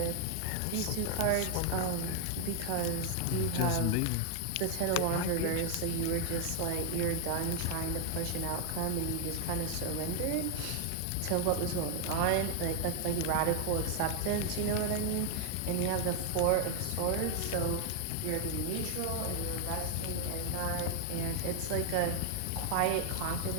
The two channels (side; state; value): both; different; correlation 0.00